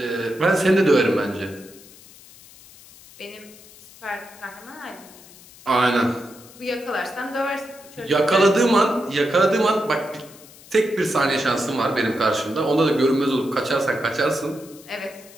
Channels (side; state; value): left; noise; hiss, 22 dB below the sound